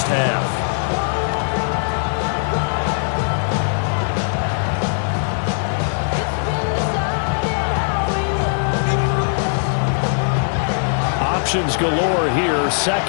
half. Options galore here.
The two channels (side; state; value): right; silent; 65 dB below the other